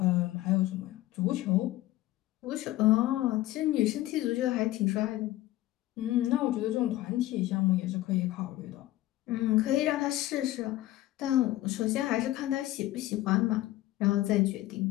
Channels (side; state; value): right; quieter; 15.8 dB